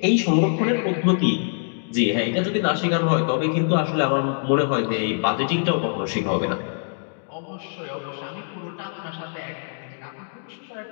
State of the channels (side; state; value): right; silent; digital silence